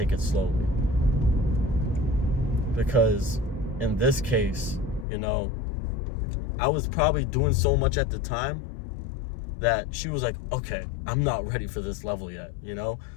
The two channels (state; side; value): drops out; right; at 5.1 s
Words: it slowly. Because in this case, you know, I was probably doing so much at the time that she was like, okay, I'm not ready for this level yet, you know?